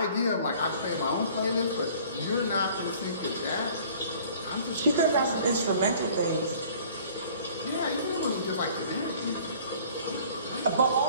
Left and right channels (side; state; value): both; inverted; correlation -0.51